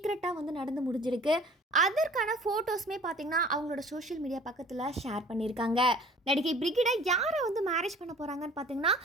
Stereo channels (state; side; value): normal; both; correlation 0.49